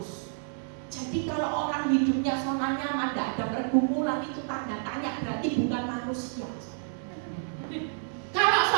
Jadi kalau orang hidupnya zona nyaman, tidak ada pergumulan, itu tanda tanya, berarti bukan manusia. Kalau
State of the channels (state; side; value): silent; left; 58 dB below the other